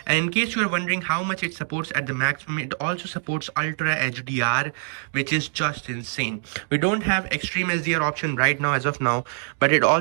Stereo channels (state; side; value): silent; left; digital silence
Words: And in case you are wondering how much it supports at the maximum, it also supports Ultra HDR, which is just insane. We don't have Extreme HDR option right now as of now, but it